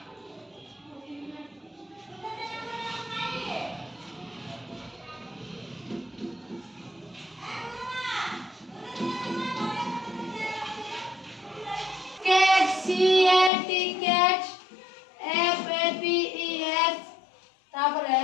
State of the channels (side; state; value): right; drops out; at 13.5 s